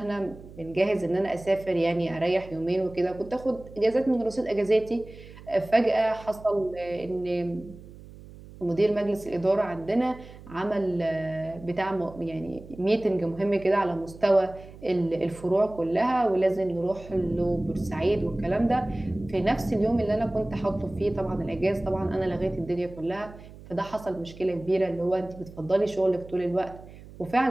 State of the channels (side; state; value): right; noise; hum, 18 dB below the sound